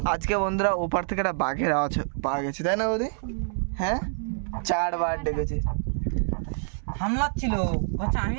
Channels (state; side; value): silent; left; digital silence